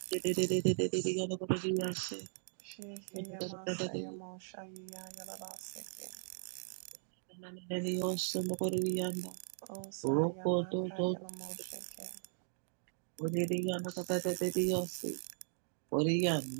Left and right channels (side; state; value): left; silent; digital silence